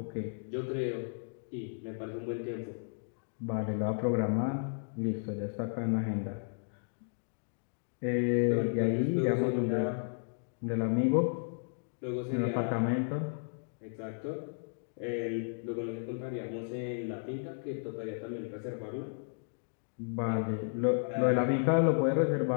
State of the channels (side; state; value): right; silent; digital silence